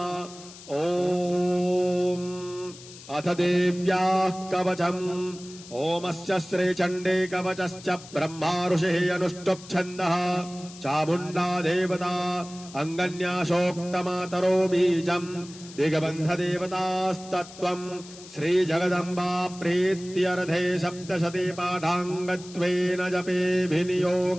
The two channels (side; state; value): left; noise; hiss, 18 dB below the sound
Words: ओम अथ देव्याः कवचम्। ओमस्य श्रीचण्डे कवचश्च ब्रह्मा ऋषिः अनुष्टुप् छन्दः चामुण्डा देवता अङ्गन्यासोक्तमातरो बीजम् दिग्बन्धदेवतास्तत्त्वम् श्रीजगदम्बा प्रीत्यर्थे सप्तशती पाठाङ्गत्वेन जपे